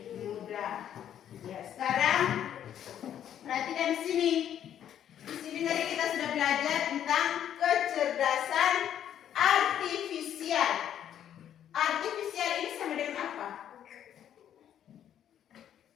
mudah. Ya, sekarang perhatikan di sini. Di sini tadi kita sudah belajar tentang kecerdasan artifisial. Artifisial ini sama dengan apa?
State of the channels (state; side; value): quieter; right; 10.1 dB